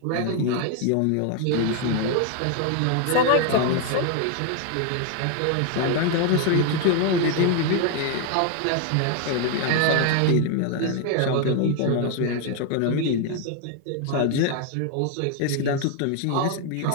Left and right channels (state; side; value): different; both; correlation 0.00